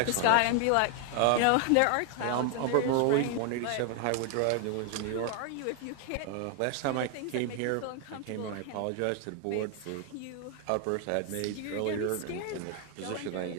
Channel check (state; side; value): different; both; correlation 0.00